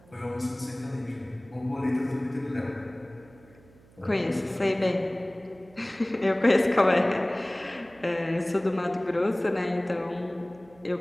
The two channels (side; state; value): right; noise; hum, 26 dB below the sound